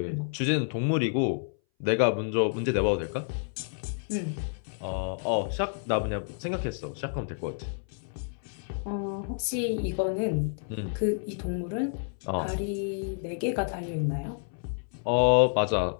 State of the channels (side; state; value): right; silent; 58 dB below the other